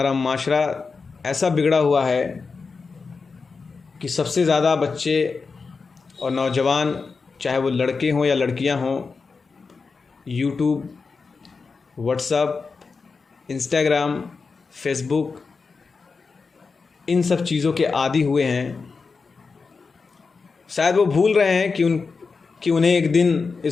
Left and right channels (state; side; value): quieter; right; 4.7 dB